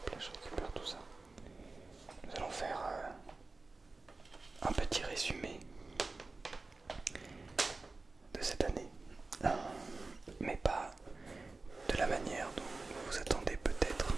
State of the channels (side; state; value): left; quieter; 3.5 dB